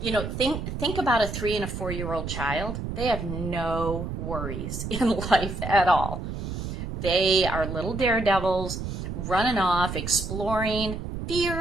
know, think about a 3 and a 4-year-old child. They have no worries in life at all. They are little daredevils, running off, exploring,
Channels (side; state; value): right; noise; rumble, 6 dB below the sound